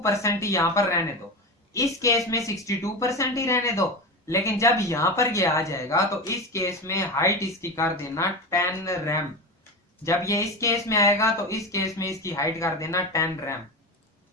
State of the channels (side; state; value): both; normal; correlation 0.22